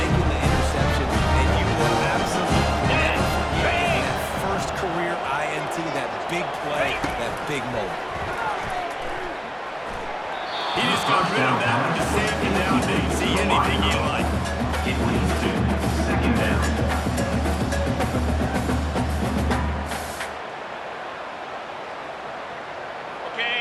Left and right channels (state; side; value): identical; both; correlation 1.00